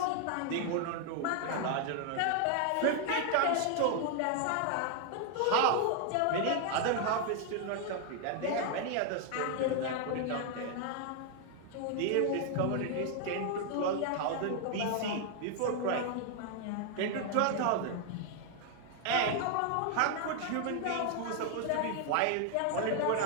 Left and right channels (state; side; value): different; both; correlation 0.00